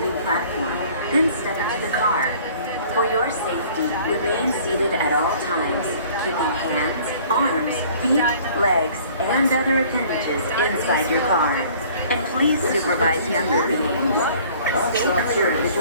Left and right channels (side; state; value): both; inverted; correlation -0.52